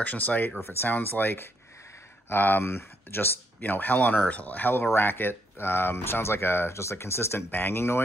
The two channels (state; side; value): normal; both; correlation 0.74